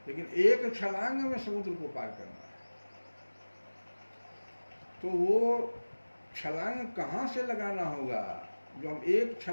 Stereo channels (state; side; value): inverted; both; correlation -1.00